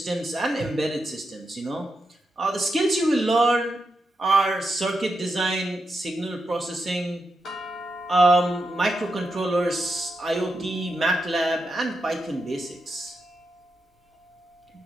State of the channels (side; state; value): both; normal; correlation 0.86